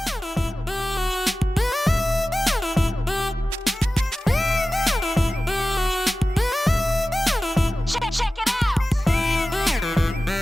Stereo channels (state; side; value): normal; both; correlation 0.96